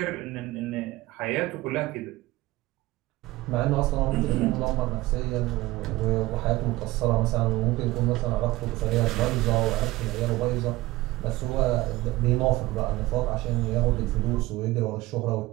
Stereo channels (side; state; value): left; quieter; 18.7 dB